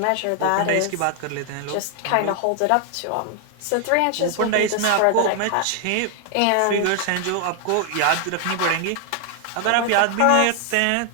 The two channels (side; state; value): both; different; correlation 0.00